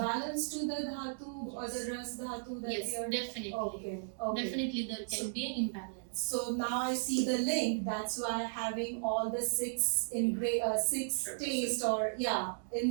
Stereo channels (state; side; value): silent; left; digital silence